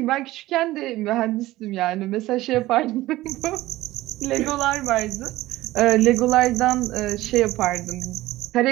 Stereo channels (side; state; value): left; quieter; 17.0 dB